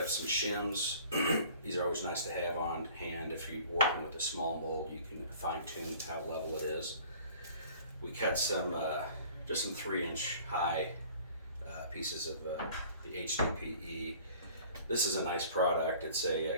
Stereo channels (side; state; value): both; inverted; correlation -0.50